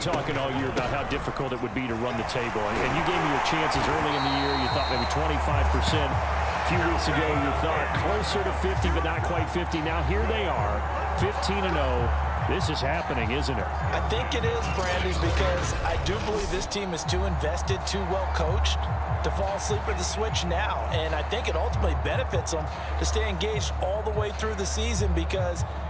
all year about how difficult it would be to run the table. And you gave me your chances early in the year. You thought maybe 25%. A few weeks ago, you thought closer to 50, but not quite 50. Now, here they are, 15-0. This is happening, isn't it? I think it is, Brandon, because I do believe this team is too invested, too well coached to fall asleep at the switch now. And I think it ultimately benefits them to stay engaged all the way through the season because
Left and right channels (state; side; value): identical; both; correlation 1.00